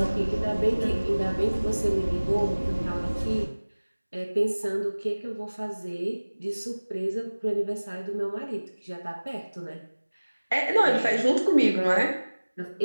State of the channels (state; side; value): inverted; both; correlation -1.00